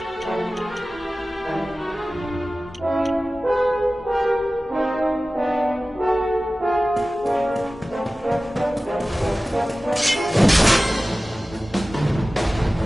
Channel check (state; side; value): normal; both; correlation 0.96